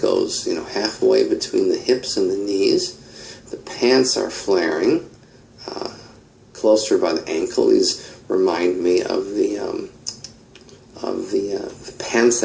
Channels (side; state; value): both; identical; correlation 1.00